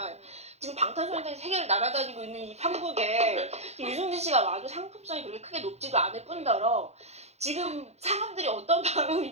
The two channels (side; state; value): left; late; 0.31 ms